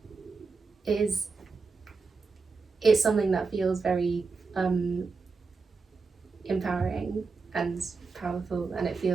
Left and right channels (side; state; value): left; quieter; 4.5 dB